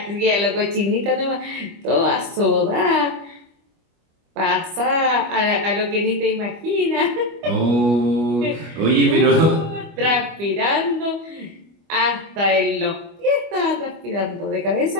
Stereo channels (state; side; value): late; left; 25 ms